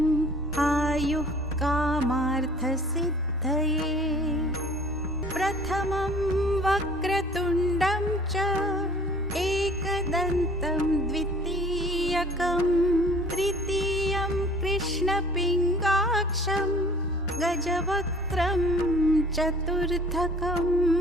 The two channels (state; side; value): normal; both; correlation 0.51